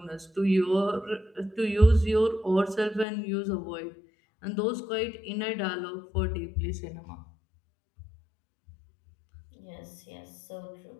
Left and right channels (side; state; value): right; drops out; at 3.1 s